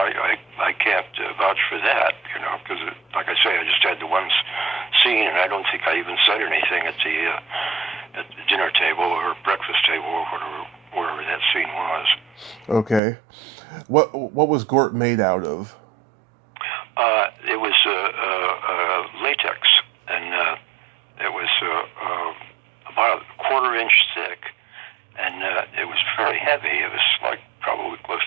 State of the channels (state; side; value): drops out; left; at 13.0 s